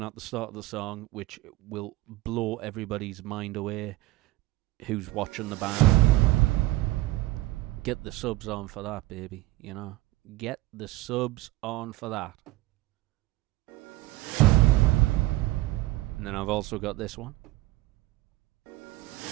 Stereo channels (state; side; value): quieter; left; 18.6 dB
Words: at the start of the song, which will blow everybody's mind away who's watching the band. Get the subs on for that, baby, you know. Get the subs on for that. And then I've also got this one.